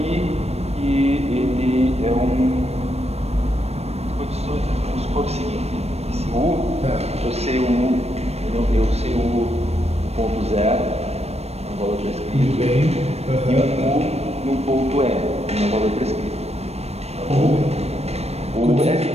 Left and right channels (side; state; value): left; late; 0.31 ms